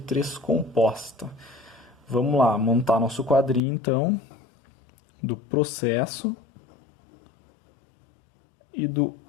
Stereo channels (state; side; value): drops out; right; at 3.6 s